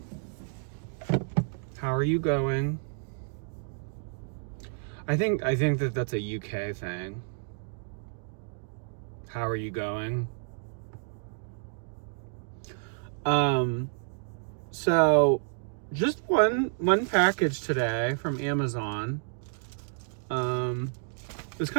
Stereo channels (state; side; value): silent; left; digital silence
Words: How are you going? I think that that's a UK thing. How are you going? So just one package today from Amazon. It was